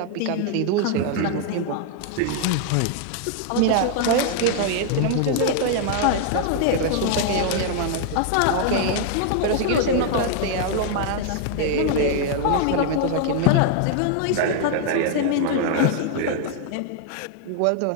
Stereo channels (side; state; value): both; different; correlation 0.00